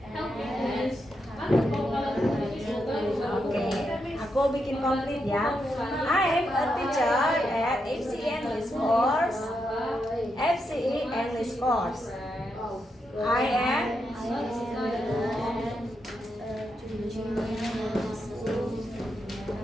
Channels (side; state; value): both; normal; correlation 0.83